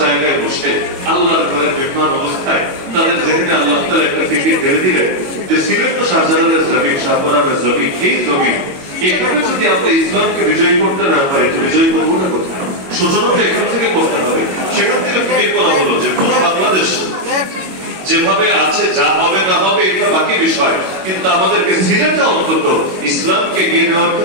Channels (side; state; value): left; late; 22 ms